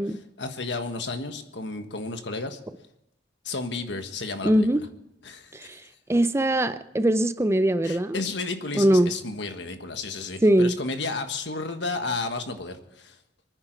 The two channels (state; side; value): normal; both; correlation 0.74